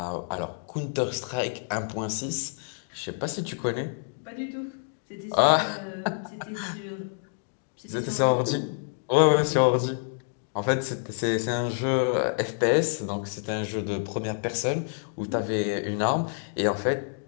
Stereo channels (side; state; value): right; silent; digital silence